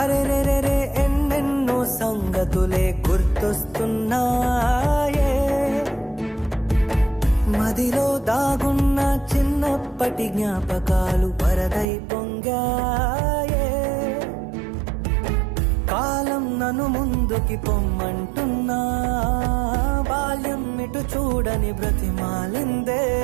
ఎన్నెన్నో సంగతులే గుర్తొస్తున్నాయే, మదిలో దాగున్న చిన్నప్పటి జ్ఞాపకాలు వరదై పొంగాయే. కాలం నన్ను ముందుకి పొమ్మంటున్నా, బాల్యం ఇటు చూడని బ్రతిమాలిందే.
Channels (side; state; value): left; drops out; at 11.9 s